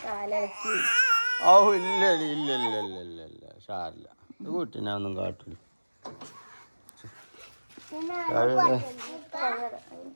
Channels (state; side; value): inverted; both; correlation -1.00